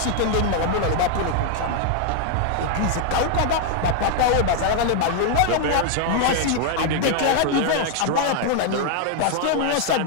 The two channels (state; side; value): different; both; correlation 0.00